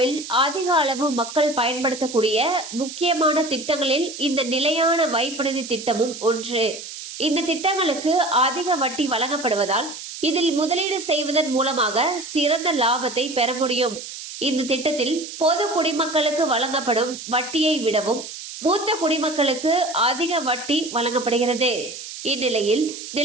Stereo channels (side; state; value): right; noise; hiss, 11 dB below the sound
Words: அதிக அளவு மக்கள் பயன்படுத்தக்கூடிய முக்கியமான திட்டங்களில் இந்த நிலையான வைப்பு நிதி திட்டமும் ஒன்று. இந்த திட்டங்களுக்கு அதிக வட்டி வழங்கப்படுவதால் இதில் முதலீடு செய்வதன் மூலமாக சிறந்த லாபத்தை பெற முடியும். இந்த திட்டத்தில் பொது குடிமக்களுக்கு வழங்கப்படும் வட்டியை விடவும் மூத்த குடிமக்களுக்கு அதிக வட்டி வழங்கப்படுகிறது. இந்நிலையில்